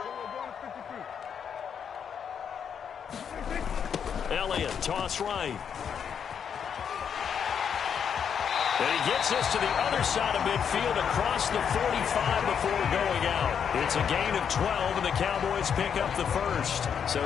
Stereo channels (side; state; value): right; quieter; 7.6 dB